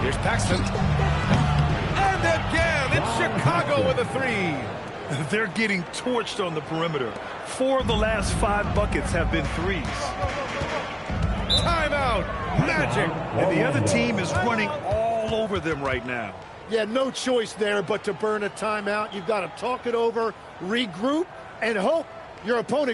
Paxson. And again, it's Chicago with a 3. They're getting torched on the perimeter. 4 of the last 5 buckets have been threes. Timeout. Magic. And the other team is running all over them right now. Yeah, no choice there but to burn a timeout. You've got to talk it over, regroup, and hope your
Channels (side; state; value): both; identical; correlation 1.00